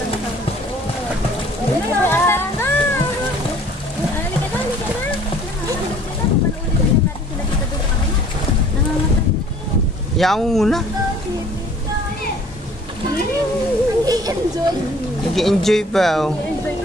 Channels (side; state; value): both; normal; correlation 0.53